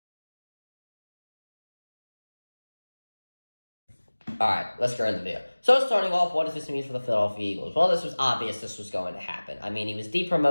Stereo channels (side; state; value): both; inverted; correlation -1.00